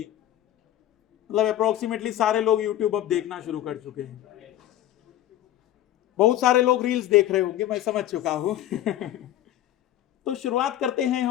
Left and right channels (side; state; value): right; quieter; 12.7 dB